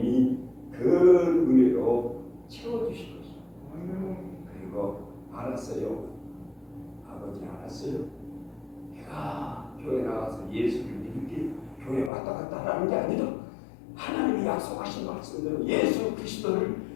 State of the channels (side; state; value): right; drops out; at 12.1 s